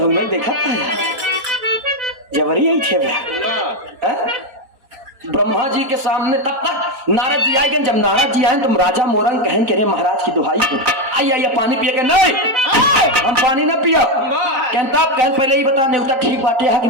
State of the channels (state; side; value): late; left; 4.3 ms